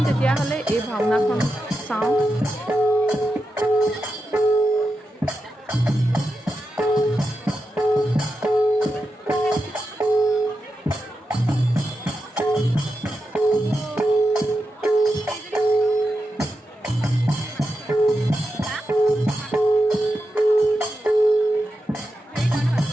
তেতিয়াহ'লে এই ভাওনাখন চাওঁ।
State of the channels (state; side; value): normal; both; correlation 0.88